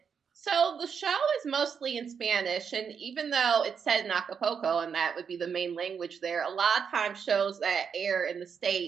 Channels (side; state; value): left; quieter; 6.7 dB